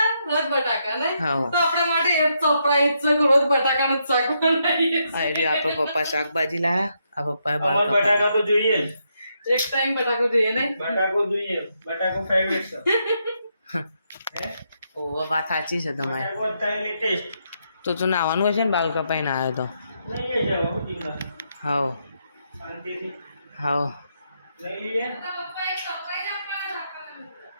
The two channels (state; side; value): inverted; both; correlation -0.79